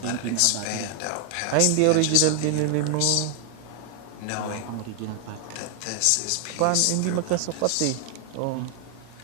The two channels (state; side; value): different; both; correlation 0.00